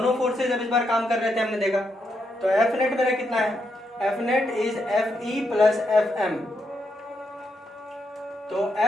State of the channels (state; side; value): normal; both; correlation 0.81